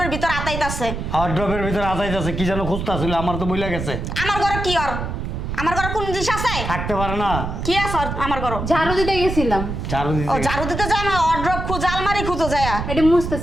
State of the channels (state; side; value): noise; right; rumble, 5 dB below the sound